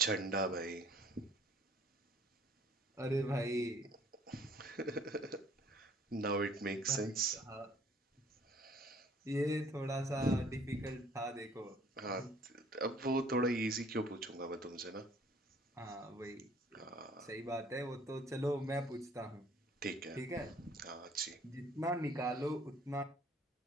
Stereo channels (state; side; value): normal; both; correlation 0.57